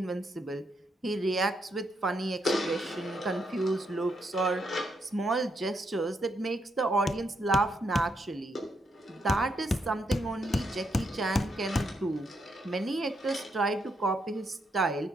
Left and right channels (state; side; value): normal; both; correlation 0.78